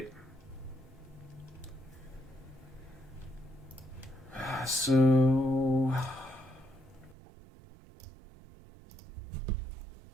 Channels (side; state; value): left; drops out; at 7.2 s